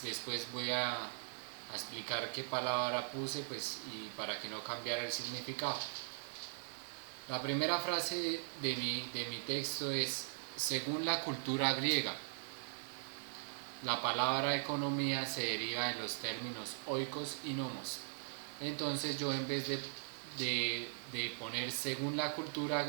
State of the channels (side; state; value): left; silent; 51 dB below the other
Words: después voy a explicar qué palabra puse, pues, y para que no cambiara el significado. La primera frase de mi texto es: según la cultura griega, la palabra economía se deriva de los términos oikos y nomos. Entonces yo, en vez de poner según la cultura